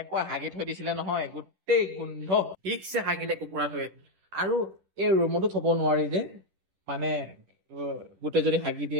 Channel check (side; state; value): left; late; 10 ms